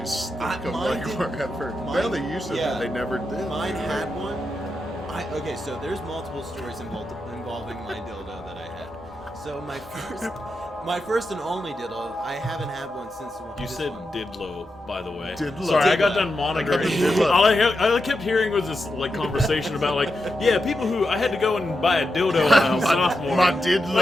stick them like wherever. Well, they used to, but they never did. Mine had one. Okay, so there's multiple stories involving my dildo that I had. So my first and only dildo, I haven't had one since. You said Didlo, by the way. Didlo. Sorry, Didlo. I got done monitoring. All I kept hearing was this like conversation about like, yeah, people who I had to go and buy a dildo when I was sophomore. My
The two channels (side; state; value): both; normal; correlation 0.87